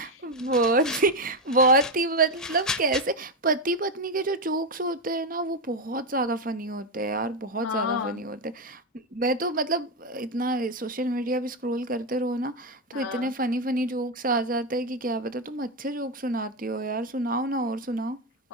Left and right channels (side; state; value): both; normal; correlation 0.09